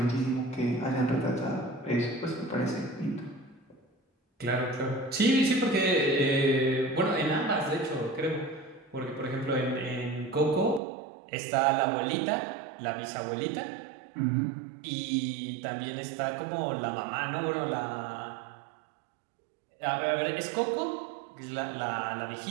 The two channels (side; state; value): left; drops out; at 10.8 s